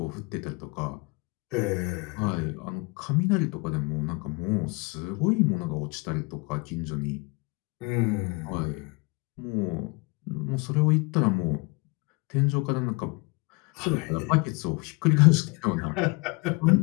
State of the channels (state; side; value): quieter; right; 27.4 dB